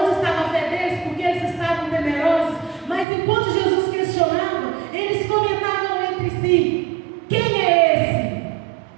estava a fé deles? Porque eles estavam temerosos. Mas enquanto Jesus questionava, eles comentavam entre si: quem é esse?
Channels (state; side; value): drops out; left; at 3.1 s